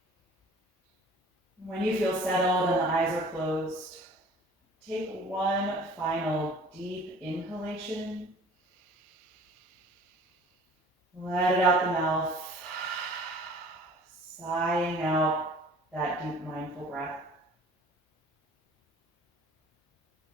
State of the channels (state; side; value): normal; both; correlation 0.48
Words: When you feel settled and the eyes are closed, take one final deep inhalation. Let it out the mouth, sighing out that deep mindful breath.